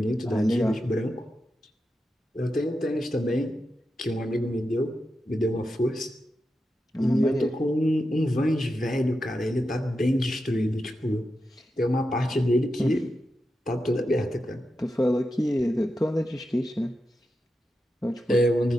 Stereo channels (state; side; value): normal; both; correlation 0.88